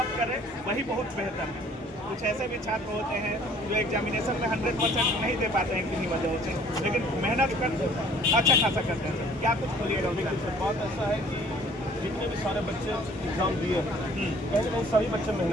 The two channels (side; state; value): both; normal; correlation 0.55